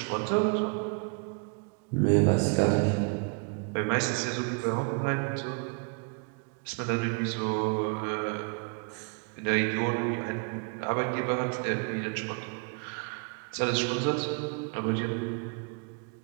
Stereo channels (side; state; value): left; quieter; 36.6 dB